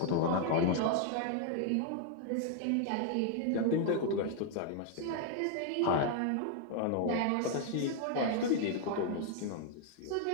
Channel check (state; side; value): different; both; correlation 0.00